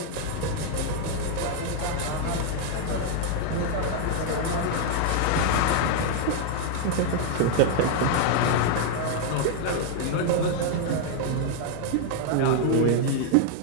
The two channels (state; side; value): different; both; correlation 0.00